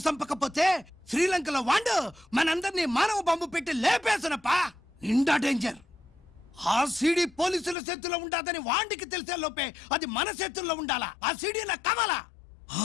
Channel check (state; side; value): drops out; right; at 7.8 s